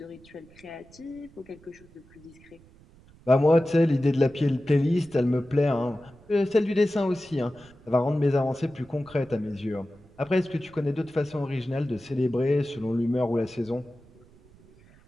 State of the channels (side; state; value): right; noise; rumble, 26 dB below the sound